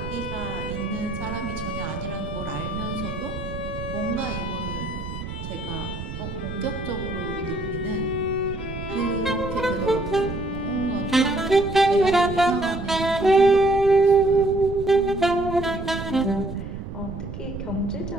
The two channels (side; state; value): right; noise; rumble, 8 dB below the sound